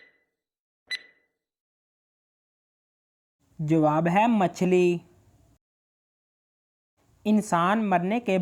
जवाब है मछली। इंसान मरने के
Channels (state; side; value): identical; both; correlation 1.00